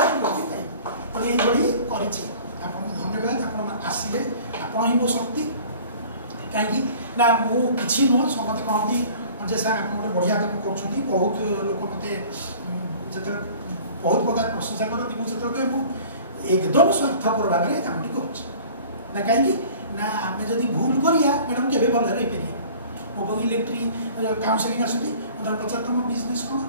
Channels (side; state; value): both; inverted; correlation -0.46